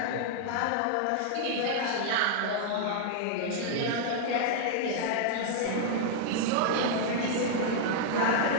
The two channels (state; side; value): different; both; correlation -0.01